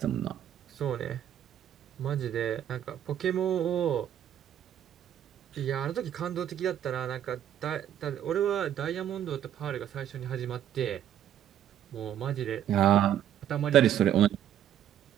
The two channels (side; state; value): left; quieter; 10.6 dB